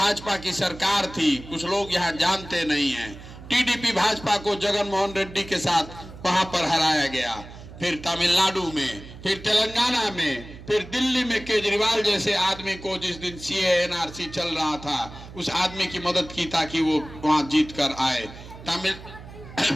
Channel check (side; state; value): right; noise; hum, 16 dB below the sound